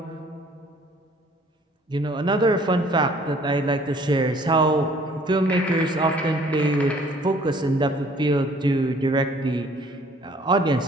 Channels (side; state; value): both; normal; correlation 0.57